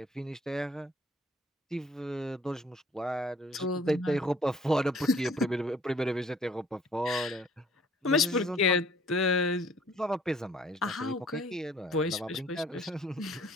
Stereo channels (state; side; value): normal; both; correlation 0.57